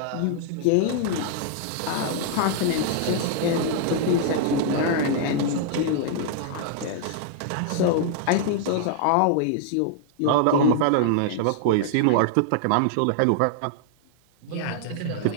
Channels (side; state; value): both; different; correlation -0.01